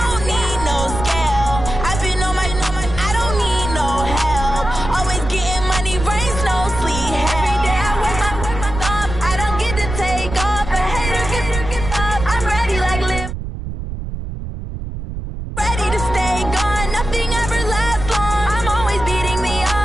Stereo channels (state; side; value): noise; right; rumble, 7 dB below the sound